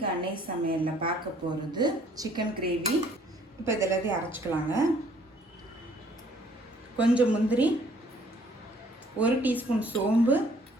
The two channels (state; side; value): normal; both; correlation 0.60